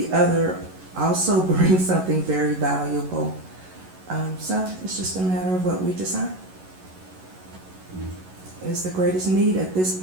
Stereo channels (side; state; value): left; late; 11 ms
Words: other also brings something very valuable. So it's just a matter of what we decide is the greatest need at this